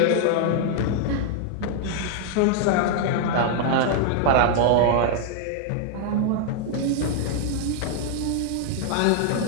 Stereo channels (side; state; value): both; different; correlation 0.00